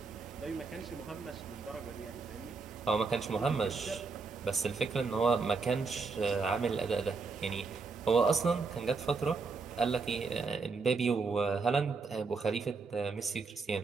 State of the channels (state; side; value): quieter; left; 4.6 dB